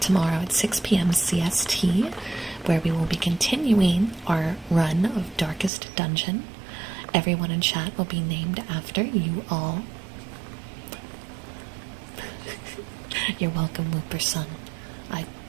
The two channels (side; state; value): left; drops out; at 5.7 s